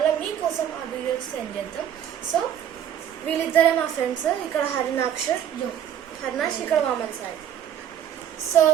మీకోసం ఆ వీడియోస్ సెండ్ చేద్దాం. సో వీళ్ళిద్దరే మా ఫ్రెండ్స్. ఇక్కడ హరినాక్ష్, ఇక్కడ వామన్ సాయి. సో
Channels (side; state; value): left; quieter; 9.9 dB